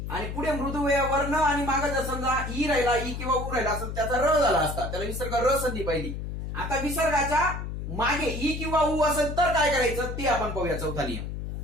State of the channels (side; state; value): left; noise; hum, 6 dB below the sound